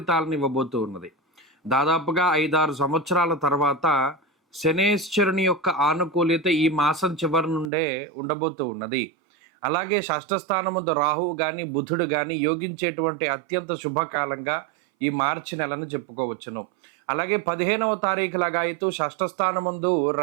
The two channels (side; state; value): left; drops out; at 7.7 s